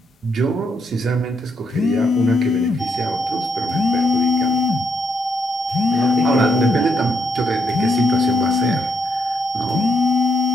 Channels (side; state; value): both; normal; correlation 0.76